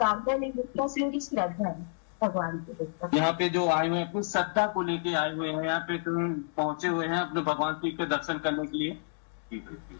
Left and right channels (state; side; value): silent; right; digital silence